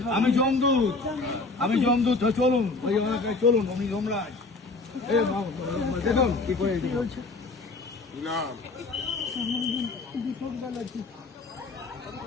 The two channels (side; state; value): right; quieter; 3.6 dB